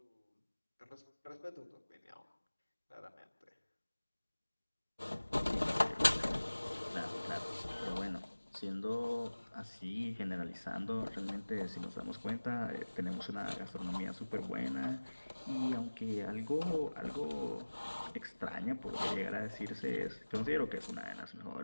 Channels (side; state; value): both; inverted; correlation -1.00